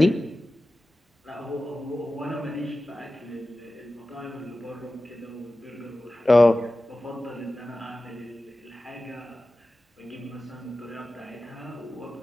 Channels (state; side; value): normal; both; correlation 0.96